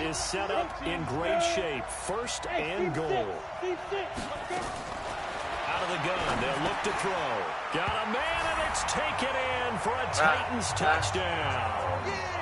set up in great shape. First and goal. Out of the gun, they'll look to throw. Got a man, and it's taken in for a Titans touchdown.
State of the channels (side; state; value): both; identical; correlation 1.00